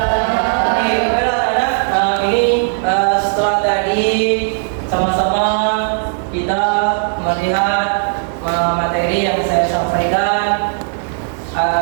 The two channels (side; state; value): left; silent; digital silence